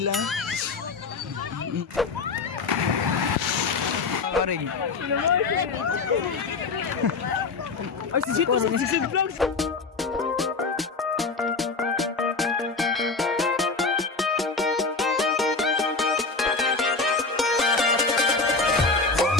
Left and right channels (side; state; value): right; quieter; 4.2 dB